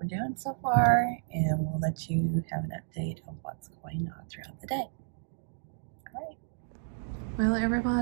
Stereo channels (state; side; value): silent; left; digital silence